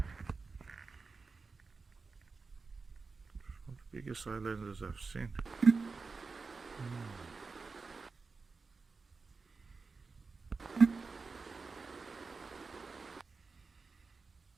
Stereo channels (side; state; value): left; quieter; 4.4 dB